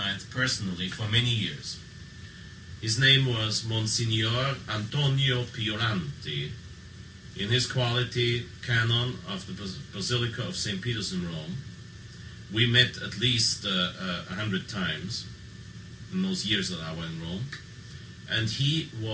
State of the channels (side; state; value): both; identical; correlation 1.00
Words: personally for many years. His name was Monsignor Antonio Pioranti. In his quality canon of the Basilica of St. Peter's in Rome, we met at least 100 times in those years that I was in Rome, and he